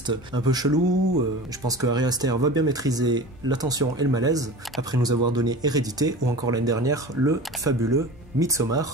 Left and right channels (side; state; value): both; normal; correlation 0.35